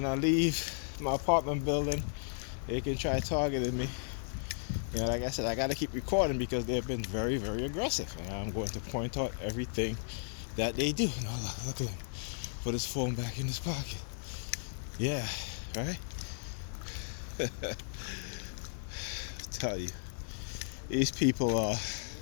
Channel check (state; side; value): silent; right; 55 dB below the other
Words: I leave my apartment building, they can try targeting me. You know, like I said, I gotta keep recording because they've been very, very aggressive. And I'm going to point out everything that they do. No, look at him. Put his phone back in his pocket. Yeah, right? Tell you, these people are